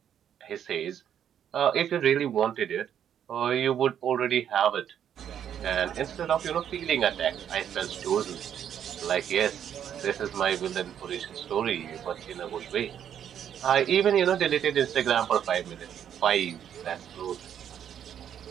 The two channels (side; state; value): left; quieter; 9.3 dB